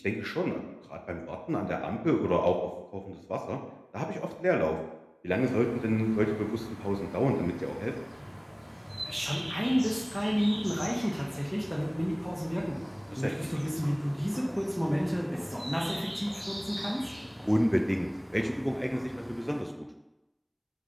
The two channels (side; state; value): both; identical; correlation 1.00